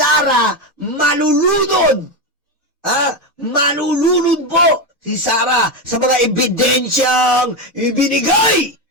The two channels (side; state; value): both; normal; correlation 0.12